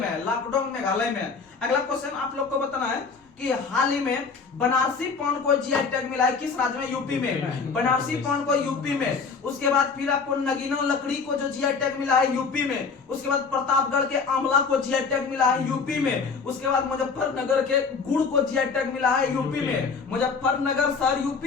है, लाकडोंग मेघालय में। अगला क्वेश्चन आप लोग को बताना है कि हाल ही में बनारसी पान को जीआई टैग मिला है किस राज्य में? यूपी में। बनारसी पान को यूपी में। उसके बाद फिर आपको नगीना लकड़ी को जो जीआई टैग मिला है यूपी में। उसके बाद प्रतापगढ़ के आंवला को जीआई टैग मिला है यूपी में। उसके बाद मुजफ्फरनगर के गुड़ को जीआई टैग मिला है यूपी में। मुजफ्फरनगर शहर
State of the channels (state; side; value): quieter; right; 5.1 dB